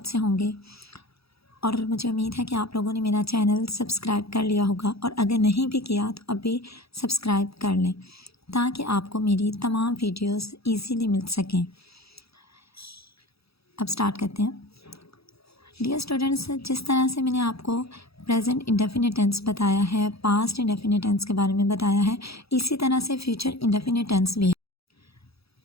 से होंगे और मुझे उम्मीद है कि आप लोगों ने मेरा चैनल सब्सक्राइब कर लिया होगा और अगर नहीं भी किया तो अभी सब्सक्राइब कर लें ताकि आपको मेरी तमाम वीडियोस इजीली मिल सकें। अब स्टार्ट करते हैं। डियर स्टूडेंट्स, जिस तरह से मैंने आपको प्रेजेंट इंडेफिनिट टेंस बताया है, पास्ट इंडेफिनिट टेंस के बारे में बताया है, इसी तरह से फ्यूचर इंडेफिनिट टेंस भी है।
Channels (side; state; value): right; late; 0.77 ms